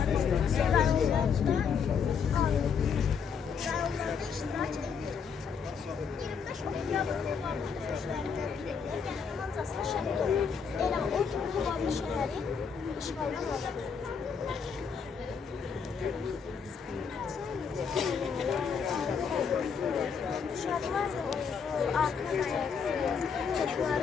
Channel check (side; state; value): right; quieter; 6.3 dB